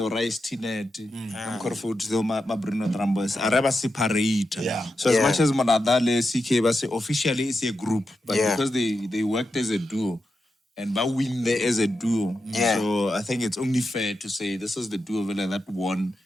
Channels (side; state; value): both; normal; correlation 0.88